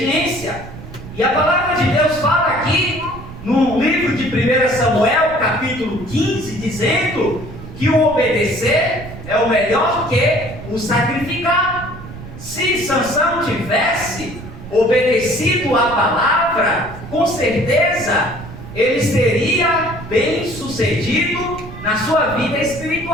E a palavra de Deus fala aqui no livro de 1 Samuel, capítulo 15, dizendo que o obedecer é o melhor que o sacrificar. Se Sansão tivesse obedecido à palavra, com certeza ele seria bem sucedido na sua vida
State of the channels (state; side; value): noise; right; rumble, 13 dB below the sound